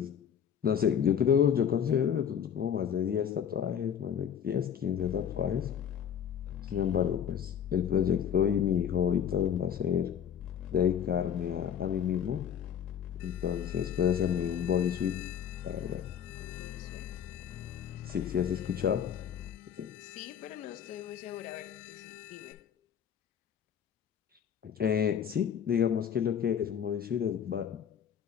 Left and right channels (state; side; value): quieter; right; 8.5 dB